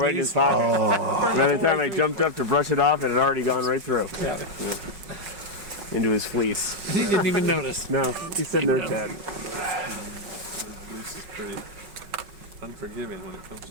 right in his pocket. By the time I jumped up to brush it off, it had already gone right through. Yeah. Into his fleece. He didn't even notice. No, he's sitting there chatting. This is pretty unforgiving when it comes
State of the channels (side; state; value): left; late; 5.4 ms